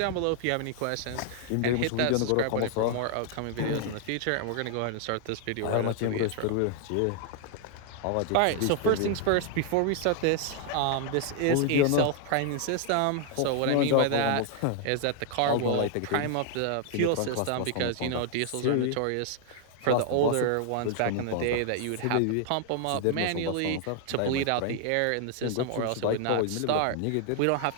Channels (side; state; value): both; different; correlation 0.00